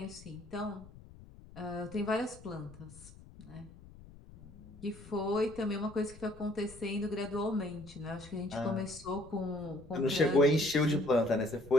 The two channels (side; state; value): left; noise; rumble, 19 dB below the sound